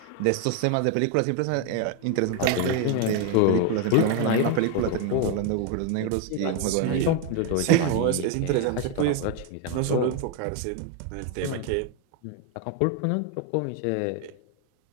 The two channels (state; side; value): different; both; correlation 0.01